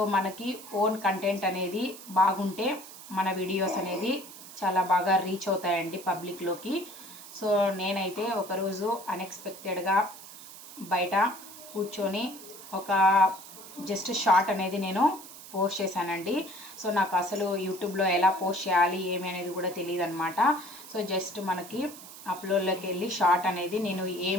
మనకి ఓన్ కంటెంట్ అనేది బాగుంటే మన వీడియోస్ అనేది చాలా బాగా రీచ్ అవుతాయండి పబ్లిక్లోకి. సో నేనైతే ఒకరోజు అన్ఎక్స్పెక్టెడ్గా బయట కూర్చొని ఒక జస్ట్ షార్ట్ అనేది నేను పోస్ట్ చేశానండి. సో నాకు అసలు యూట్యూబ్లో ఎలా పోస్ట్ చేయాలి ఏమి అనేది కూడా తెలియదు అనమాట. సో జస్ట్ మనకి అప్లోడ్లోకి వెళ్ళి షార్ట్ అనేది నేను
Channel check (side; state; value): right; noise; hiss, 16 dB below the sound